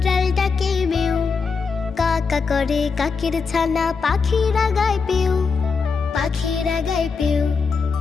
ডাকে মেউ, কাকা করে কাকের ছানা পাখিরা গায় পেউ, পাখিরা গায় পেউ।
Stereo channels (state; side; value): quieter; right; 5.1 dB